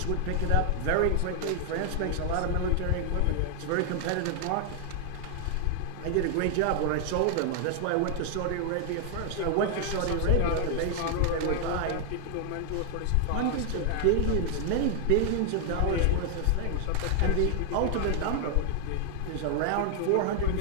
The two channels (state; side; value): different; both; correlation 0.00